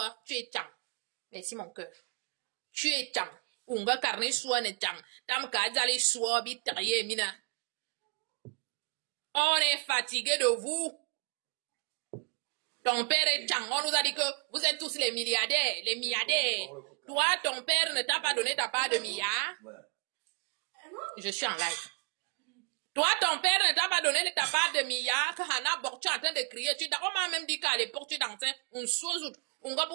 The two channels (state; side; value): quieter; left; 36.4 dB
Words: tu es Tchang. Merci mon cœur. Tu es Tchang. Unga carne Soua ne Tchang. Tam ka Zali Soua, bitaye mina. On est fatigué de vous. Ton père est Tchang. On nous a dit que vous êtes tous les milliardaires, les milliardaires. Toi, ton père ne t'a pas donné ta part de milliards. Je suis en live. Toi, ton père ne t'a pas donné ta part de milliards. Hana Bok, tu es en train de crier. On m'a même dit qu'à l'époque, tu dansais un sozout. On va